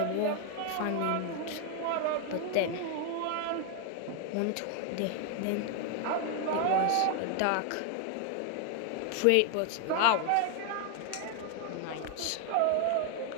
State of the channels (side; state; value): both; different; correlation 0.00